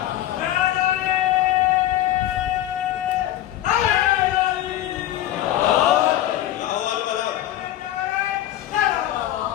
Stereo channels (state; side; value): quieter; right; 13.3 dB